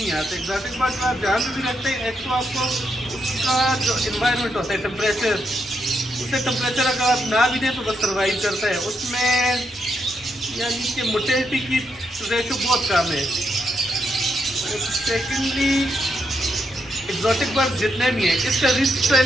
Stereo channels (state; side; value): normal; both; correlation 0.80